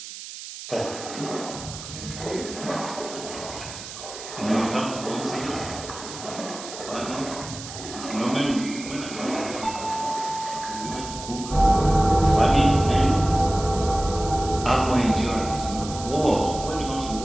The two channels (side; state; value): right; noise; hiss, 12 dB below the sound